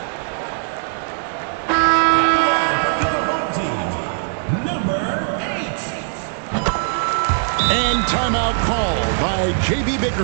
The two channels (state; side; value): silent; left; digital silence